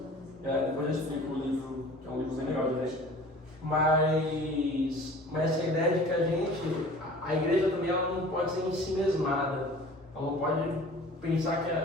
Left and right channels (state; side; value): normal; both; correlation 0.45